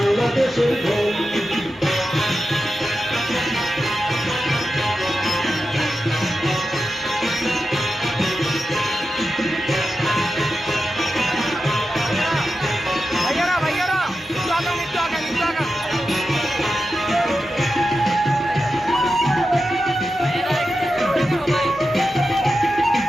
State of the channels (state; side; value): normal; both; correlation 0.91